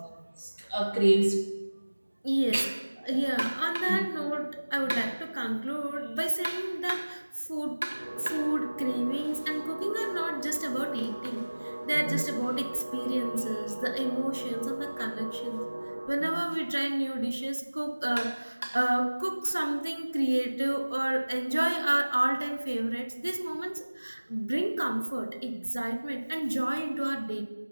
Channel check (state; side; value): inverted; both; correlation -1.00